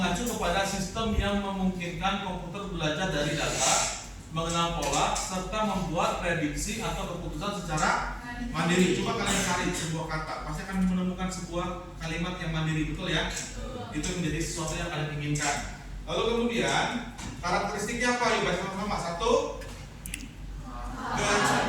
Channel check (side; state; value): both; identical; correlation 1.00